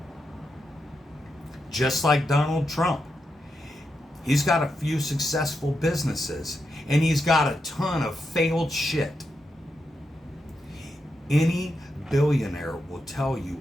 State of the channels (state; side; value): normal; both; correlation 0.85